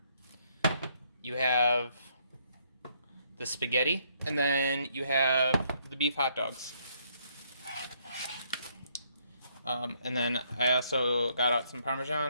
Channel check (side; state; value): both; inverted; correlation -0.70